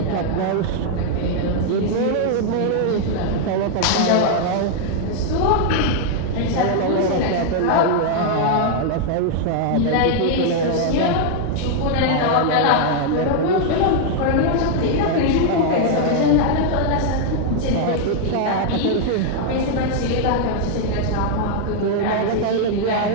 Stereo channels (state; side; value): different; both; correlation 0.00